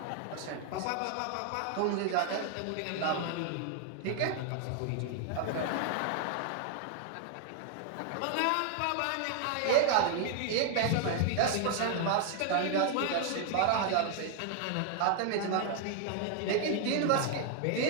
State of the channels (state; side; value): different; both; correlation 0.00